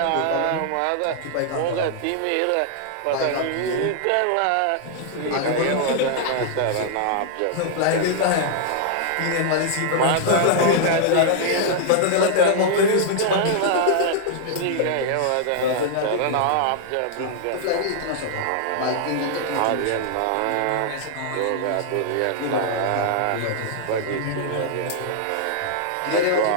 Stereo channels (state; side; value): different; both; correlation -0.01